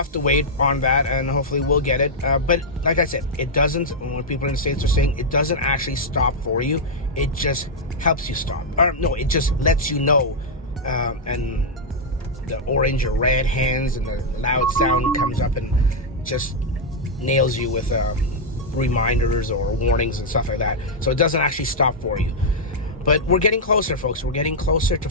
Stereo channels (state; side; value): normal; both; correlation -0.04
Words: to wait on that, and hopefully we'll get it. But like I said, it doesn't, when people in the States are saying, it doesn't actually stop for you. It just helps you stop. Or no, it just lets you know, and the orange or red hands and the loud sound comes up and just nails you with reminders or warnings and stuff like that. So it doesn't actually stop for you. But we're getting closer, folks. We're getting closer to